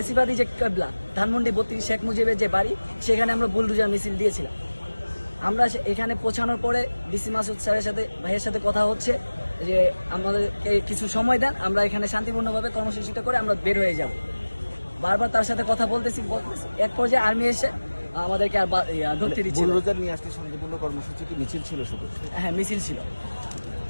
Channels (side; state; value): both; inverted; correlation -1.00